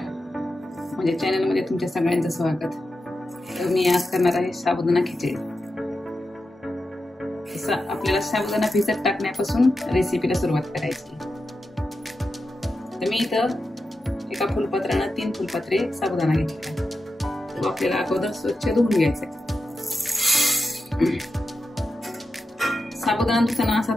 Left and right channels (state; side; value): normal; both; correlation 0.90